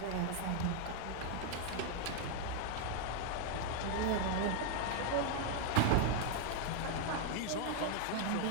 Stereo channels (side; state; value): both; different; correlation 0.00